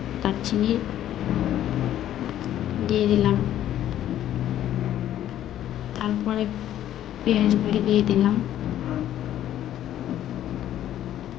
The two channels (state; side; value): quieter; right; 11.9 dB